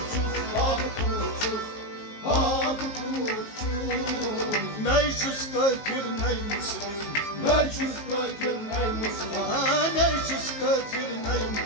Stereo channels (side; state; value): right; late; 19 ms